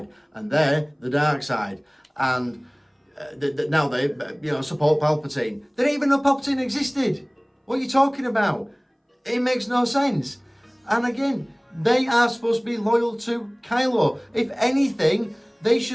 and they're the dark side. And now they support Palpatine. They didn't even know Palpatine existed. What are you talking about? It makes no sense. And again, they are supposed to be loyal to Kylo. If anything, they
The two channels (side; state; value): both; identical; correlation 1.00